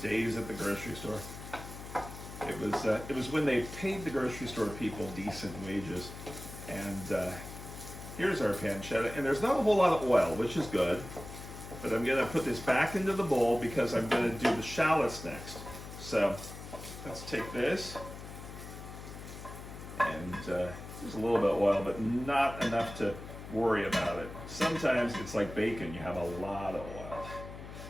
at the grocery store. It was when they paid the grocery store people decent wages. And here's our pancetta. And there's not a whole lot of oil, which is good. But I'm going to put this back into the bowl because I'm going to do the shallots next. So let's take this. And there's a little bit of oil, but not enough to worry about it. Sometimes it's like bacon. You have a lot of oil.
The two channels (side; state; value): left; noise; hum, 12 dB below the sound